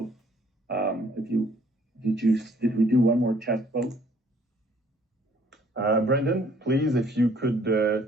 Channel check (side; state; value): both; normal; correlation 0.61